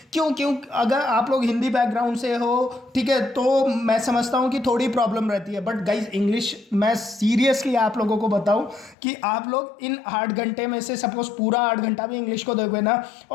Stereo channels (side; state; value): right; drops out; at 9.0 s